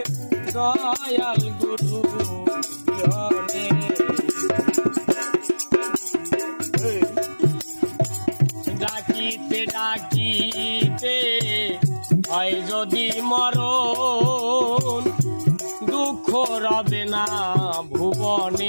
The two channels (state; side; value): inverted; both; correlation -1.00